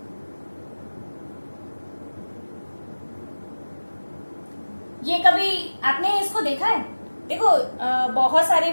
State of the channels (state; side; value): inverted; both; correlation -1.00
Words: ये कभी आपने इसको देखा है? देखो बहुत सारे